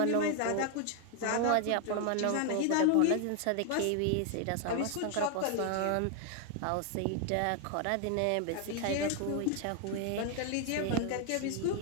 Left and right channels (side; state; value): both; different; correlation 0.00